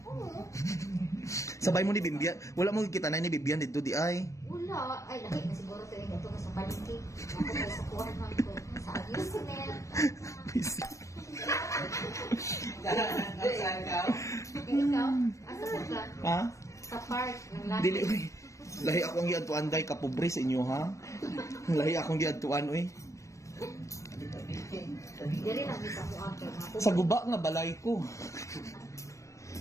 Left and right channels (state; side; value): late; right; 0.15 ms